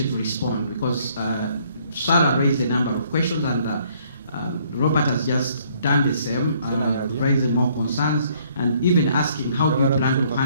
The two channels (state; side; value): inverted; both; correlation -0.64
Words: to respond, because Sarah raised a number of questions, and Robert has just done the same, raising more concerns, and even asking how do you plan to